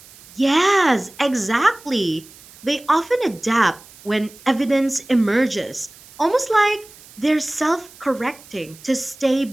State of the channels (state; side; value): noise; right; hiss, 22 dB below the sound